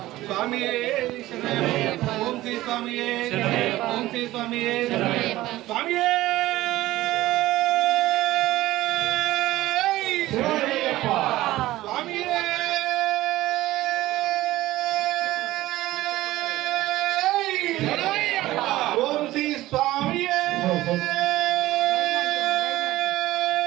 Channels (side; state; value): left; quieter; 16.5 dB